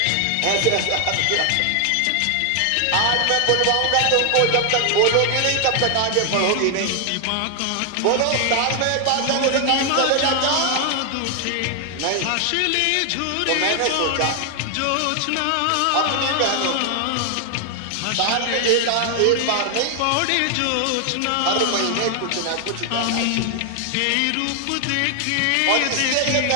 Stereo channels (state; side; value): different; both; correlation 0.00